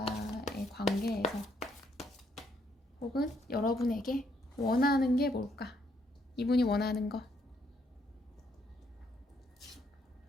관계에서 혹은 여러분에게 원하는 게 뭘까? 이분이 원하는 거.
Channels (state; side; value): normal; both; correlation 0.72